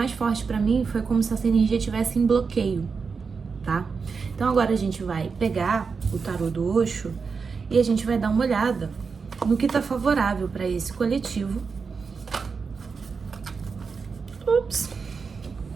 forte pra mim foi como se essa energia estivesse em bloqueio, tá? Então agora a gente vai pegar o tarô do Osho e a gente vai dar uma olhada no que tá favorável pra esse coletivo.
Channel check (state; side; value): quieter; left; 5.2 dB